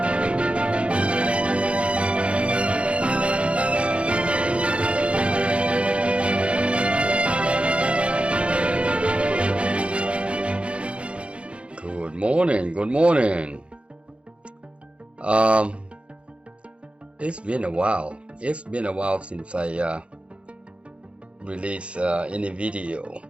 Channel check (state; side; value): late; left; 0.059 ms